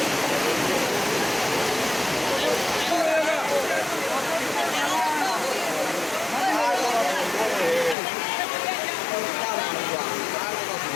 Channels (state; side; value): drops out; right; at 8.0 s